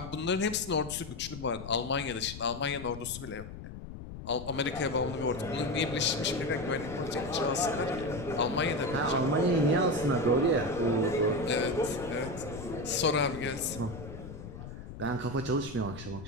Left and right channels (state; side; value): noise; left; rumble, 11 dB below the sound